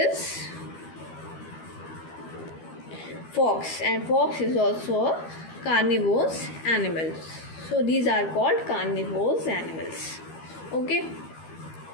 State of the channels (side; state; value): right; late; 12 ms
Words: fox, and fox is also a carnivorous animal. So these are called carnivorous animals. Okay.